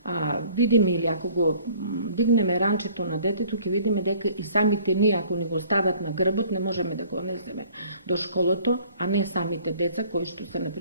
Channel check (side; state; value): both; inverted; correlation -0.54